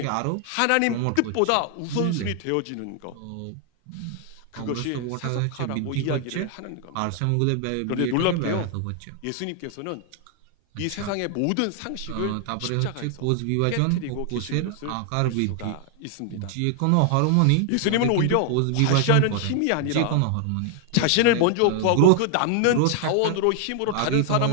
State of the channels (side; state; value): both; different; correlation 0.00